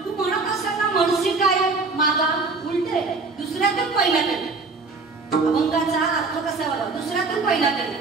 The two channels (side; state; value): left; quieter; 4.0 dB